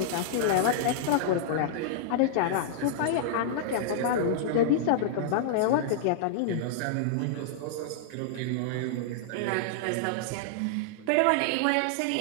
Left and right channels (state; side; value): different; both; correlation -0.01